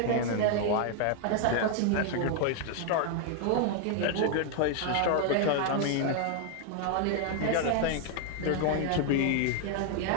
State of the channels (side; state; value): both; different; correlation 0.00